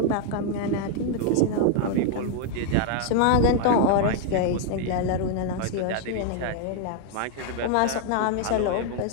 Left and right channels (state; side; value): different; both; correlation 0.00